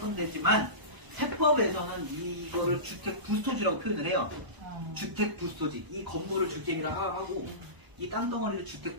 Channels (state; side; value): late; left; 1.0 ms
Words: 데지만 세법에서는 이거를 주택 부스토지라고 표현을 해요. 주택 부스토지. 이 건물을 주택이라고 하고 이 땅덩어리를 주택